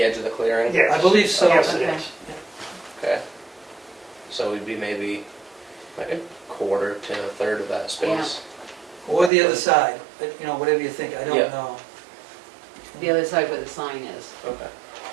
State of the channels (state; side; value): drops out; left; at 9.3 s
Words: edge of the clearing? Yes. I believe so. Yes, it Okay. is. Okay. So we'd be maybe like a quarter to a third of that space. Or the other side, but, you know, whatever you think, I don't Yeah. know. The other side where the sign is. Okay.